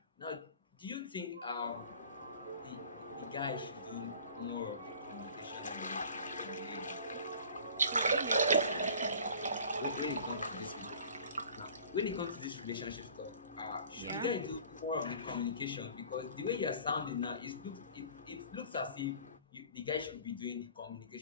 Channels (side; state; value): both; inverted; correlation -0.46